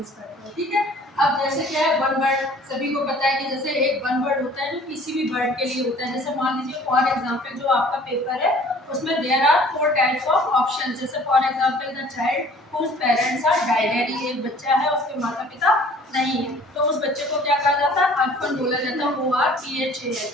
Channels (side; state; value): both; normal; correlation 0.52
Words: करते हैं, ठीक है। अब जैसे क्या है, वन वर्ड सभी को पता है कि जैसे एक वन वर्ड होता है जो किसी भी वर्ड के लिए होता है। जैसे मान लीजिए फॉर एग्जांपल जो आपका पेपर है उसमें there are 4 types of option. जैसे for example the child whose parents are died, यानी एक बच्चा है उसके माता पिता नहीं है, तो उस बच्चे को क्या कहा जाता है, अनफन बोला जाता है, ORPHAN।